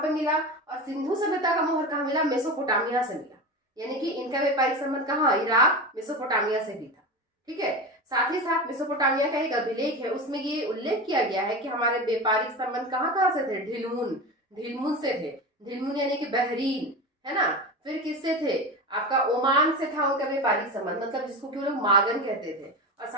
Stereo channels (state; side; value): normal; both; correlation 0.25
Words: पे मिला, और सिंधु सभ्यता का मोहर कहाँ मिला, मेसोपोटामिया से मिला। यानी कि इनका व्यापारिक संबंध कहाँ, इराक मेसोपोटामिया से भी था। ठीक है, साथ ही साथ मेसोपोटामिया का एक अभिलेख है, उसमें ये उल्लेख किया गया है कि हमारे व्यापारिक संबंध कहाँ से थे, ढिलमुन से थे। ढिलमुन यानी कि बहरीन, है ना। फिर किससे थे, आपका ओमान से था उनका व्यापारिक संबंध, मतलब जिसको कि वो लोग मागन कहते थे। और